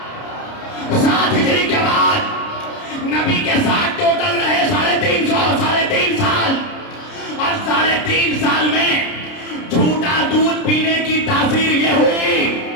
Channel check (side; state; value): right; late; 30 ms